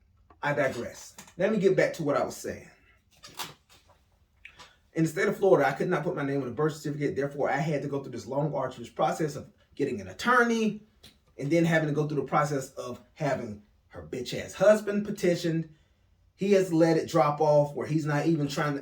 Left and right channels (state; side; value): identical; both; correlation 1.00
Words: I digress. Let me get back to what I was saying. In the state of Florida, I could not put my name on a birth certificate. Therefore, I had to go through this long, arduous process of getting an attorney, and then having to go through the process of having her bitch ass husband petitioned. He has let it drop off where he's not even trying